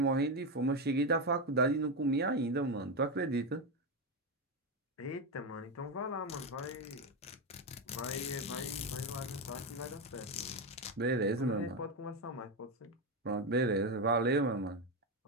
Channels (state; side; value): normal; both; correlation 0.10